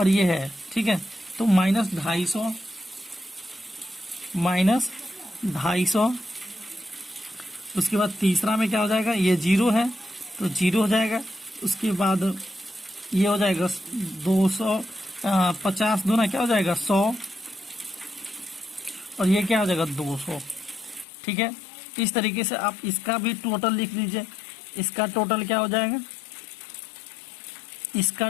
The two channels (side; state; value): right; drops out; at 21.1 s